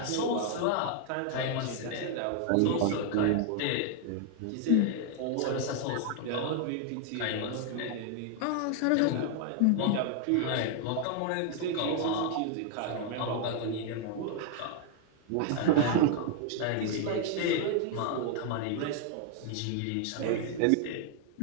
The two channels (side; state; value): both; different; correlation 0.00